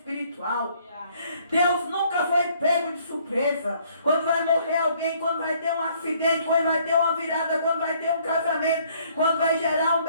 Deus nunca foi pego de surpresa. Quando vai morrer alguém, quando vai ter um acidente, quando vai ter uma virada, quando vai ter um casamento, quando vai gerar um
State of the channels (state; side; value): inverted; both; correlation -0.63